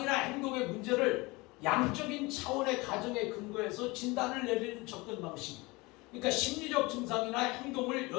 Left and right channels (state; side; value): quieter; right; 23.9 dB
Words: 행동의 문제를 양적인 차원의 가정에 근거해서 진단을 내리는 접근 방식. 그러니까 심리적 증상이나 행동을